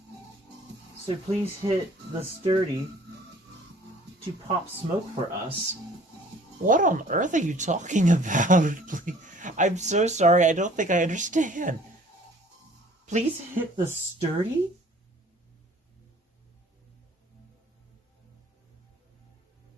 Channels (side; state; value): both; normal; correlation 0.53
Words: So please hit the Sturdy to pop smoke for us. What on earth are you talking about? I'm so sorry, I don't think I understand. Please hit the Sturdy?